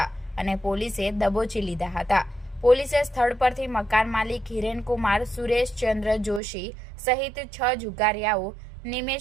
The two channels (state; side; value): drops out; left; at 6.4 s